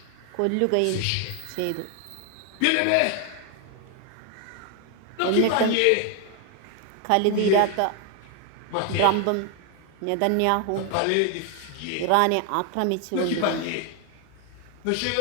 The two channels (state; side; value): different; both; correlation 0.01